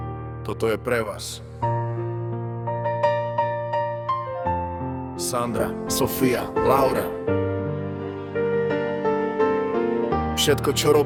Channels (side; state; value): both; identical; correlation 1.00